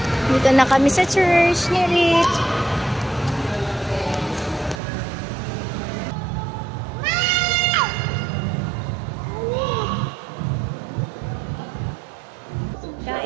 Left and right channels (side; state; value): left; drops out; at 4.8 s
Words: Dito na kami sa church ni Rich.